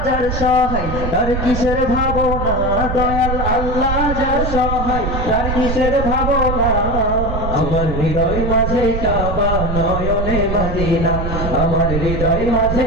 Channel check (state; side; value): noise; right; rumble, 3 dB below the sound